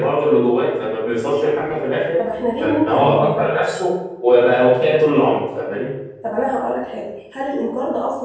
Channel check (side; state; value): both; identical; correlation 1.00